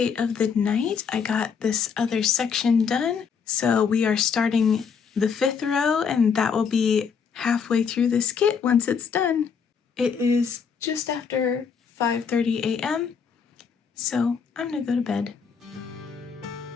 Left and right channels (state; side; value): quieter; right; 6.3 dB